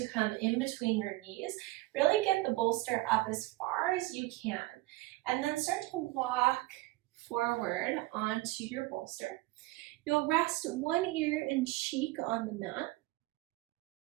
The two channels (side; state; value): left; quieter; 19.6 dB